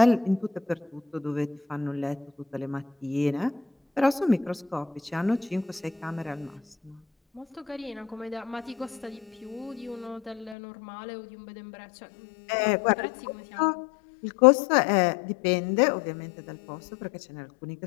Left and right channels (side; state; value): right; drops out; at 10.6 s